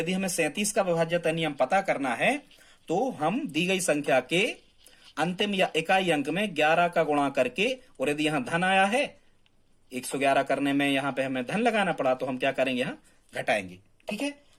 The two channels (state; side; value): identical; both; correlation 1.00